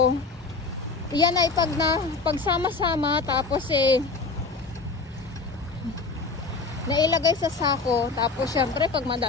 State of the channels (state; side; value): quieter; right; 4.3 dB